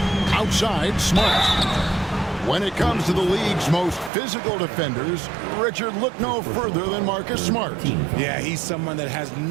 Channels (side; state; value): left; drops out; at 4.1 s